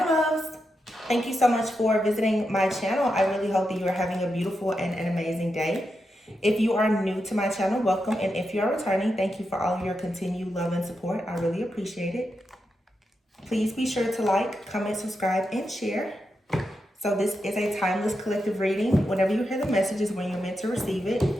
loves. Thank you so much for visiting my channel. I really hope that you are having a beautiful and an amazing day. If you are new to my channel, welcome. And if you are returning, thank you for all of your continued love and support. I really appreciate it. Please be sure to like, comment, subscribe, and share. So this is a timeless collective reading. Whenever you hear the message is when you're meant to receive it.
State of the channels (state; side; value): normal; both; correlation 0.86